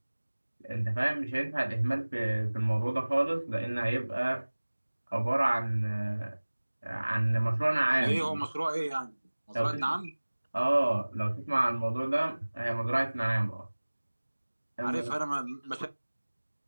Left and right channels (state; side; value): inverted; both; correlation -1.00